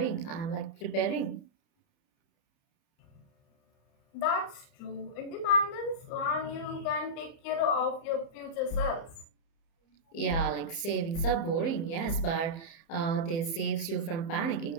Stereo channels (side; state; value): right; late; 30 ms